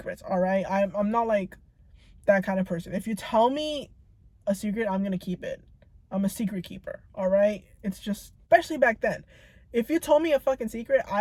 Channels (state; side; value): identical; both; correlation 1.00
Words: all right? I'm not like that kind of person. If you tell me a secret, I'm gonna keep it. I'm a secret keeper, all right? It's just, especially back then. If you told me a fucking secret,